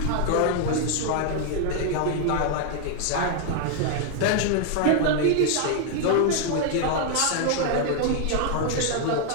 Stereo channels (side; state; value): both; different; correlation 0.00